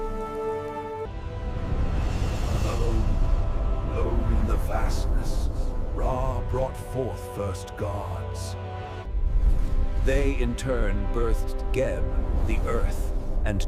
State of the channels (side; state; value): both; identical; correlation 1.00